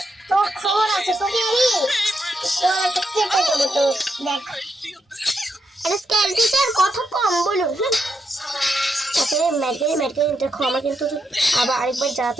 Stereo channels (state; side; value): normal; both; correlation 0.82